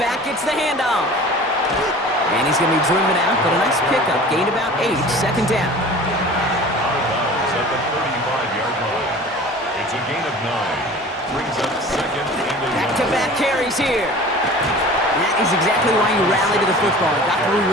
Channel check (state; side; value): normal; both; correlation 0.42